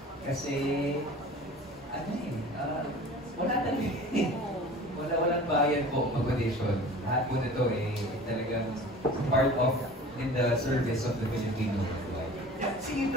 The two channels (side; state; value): both; normal; correlation 0.41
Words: Kasi, wala talaga walang bayan po mag-audition. Lahat po nito talagang part of in the service of the Filipino. Singin